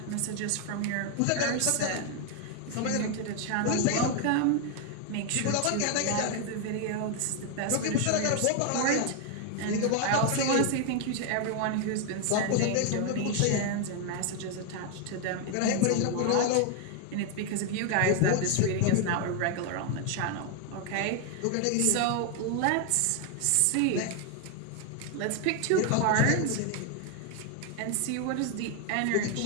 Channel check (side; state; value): both; different; correlation 0.01